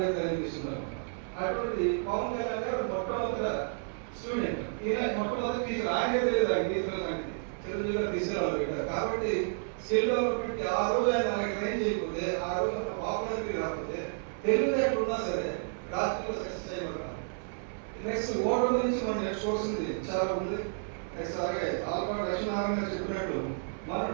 ట్రైనింగ్ ఇస్తున్నారు. అటువంటి పవన్ కళ్యాణ్ గారు మొట్టమొదటి స్టూడెంట్, ఈయన మొట్టమొదటి టీచర్. ఆయనే తెలియదు ఆయన టీచర్ సంగతి, చిరంజీవి గారు తీసుకురావాలి. కాబట్టి స్కిల్ డెవలప్మెంట్ ఆ రోజు ఆయన మనకి ట్రైన్ చేయకపోతే, ఆ రోజు అంత పాపులారిటీ రాకపోతే, తెలివితేటలు ఉన్నా సరే రాజకీయంలో సక్సెస్ అయ్యేవారు. నెక్స్ట్ ఓటర్ నుంచి మనం నేర్చుకోవాల్సింది చాలా ఉంది. నెక్స్ట్ అలాగే ఆల్కౌట్ లక్ష్మీనారాయణ గారు చెప్పినట్టు మనం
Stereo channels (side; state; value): left; silent; 57 dB below the other